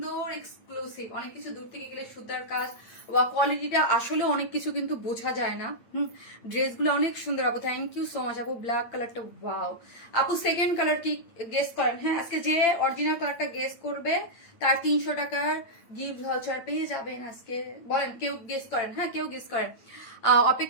এক্সক্লুসিভ, অনেক কিছু দূর থেকে গেলে সুতার কাজ বা কোয়ালিটিটা আসলে অনেক কিছু কিন্তু বোঝা যায় না। ড্রেসগুলো অনেক সুন্দর আপু, থ্যাংক ইউ সো মাচ আপু। ব্ল্যাক কালারটা ওয়াও আপু। সেকেন্ড কালার কি গেস করেন? হ্যাঁ, আজকে যে অরিজিনাল কালারটা গেস করবে তার 300 টাকার গিফট ভাউচার পেয়ে যাবেন আজকে। বলেন কেউ গেস করেন? হ্যাঁ কেউ গেস করেন।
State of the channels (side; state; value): right; late; 8.8 ms